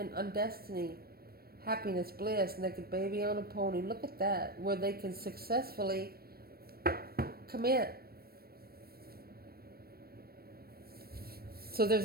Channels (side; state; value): left; late; 0.44 ms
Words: on destiny. Happiness, bliss, naked baby on a pony. Look at that. Where they can successfully commit. So